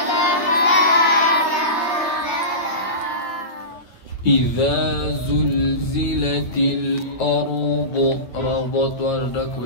إذا زلزلت الأرض ربط وردك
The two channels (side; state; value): right; late; 9.1 ms